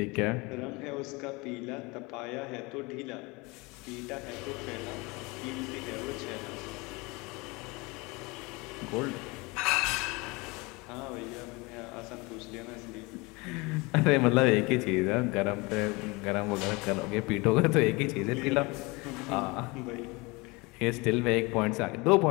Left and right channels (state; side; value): quieter; right; 25.6 dB